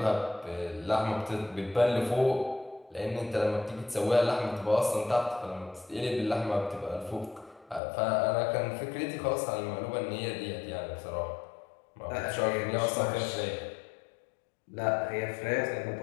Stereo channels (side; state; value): right; drops out; at 7.8 s